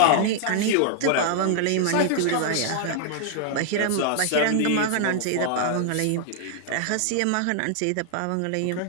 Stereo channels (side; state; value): both; different; correlation 0.00